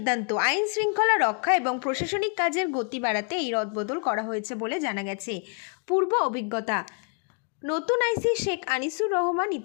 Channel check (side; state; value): right; quieter; 39.9 dB